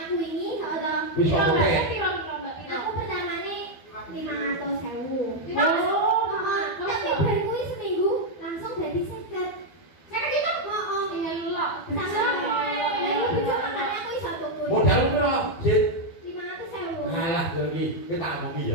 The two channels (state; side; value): late; right; 12 ms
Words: aku wingi ora. Wis kok oke. Aku pertamane 500.000. Oh, tapi baru kuwi seminggu langsung dadi 50. 50 juta? Heeh. Elok. Modal piro, Sit? 500.000. Alah, lho iki kita omongi